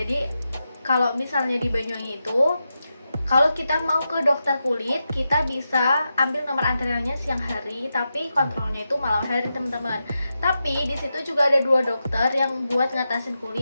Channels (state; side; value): inverted; both; correlation -0.89